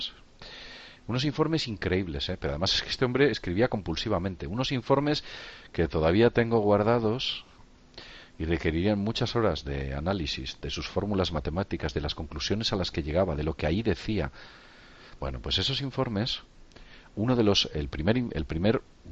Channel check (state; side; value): identical; both; correlation 1.00